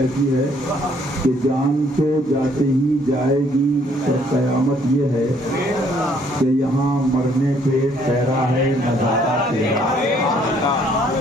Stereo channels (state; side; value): normal; both; correlation 0.64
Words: है कि जान तो जाते ही जाएगी, पर कयामत ये है कि यहाँ मरने पे ठहरा है नजारा तेरा।